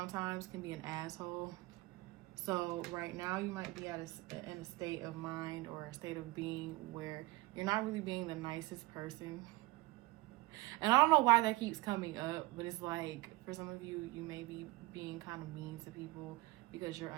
can be an asshole. So right now you might be in a state of mind or a state of being where you're not really being the nicest person. And I don't know why that keeps coming up, but it's like, for some of you, you may be being kind of mean to people because you're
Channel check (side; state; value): left; quieter; 20.7 dB